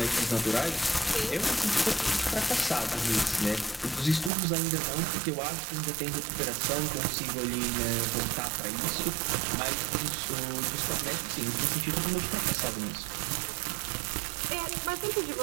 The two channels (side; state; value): left; drops out; at 4.3 s